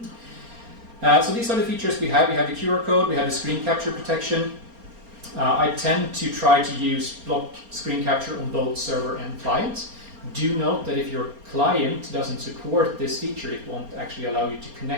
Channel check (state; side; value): late; left; 4.3 ms